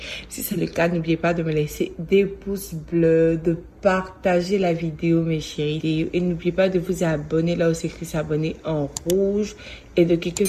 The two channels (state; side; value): identical; both; correlation 1.00